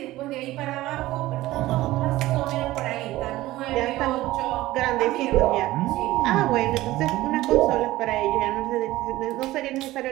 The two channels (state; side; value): quieter; left; 17.0 dB